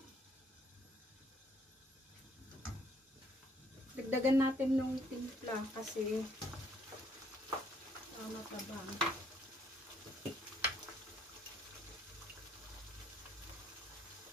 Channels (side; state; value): both; normal; correlation 0.66